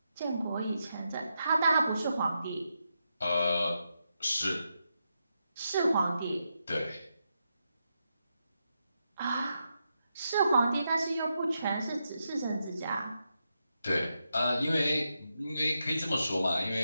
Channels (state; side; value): inverted; both; correlation -0.85